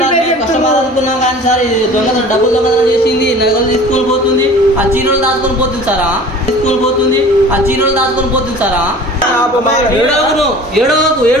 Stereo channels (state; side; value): normal; both; correlation 0.43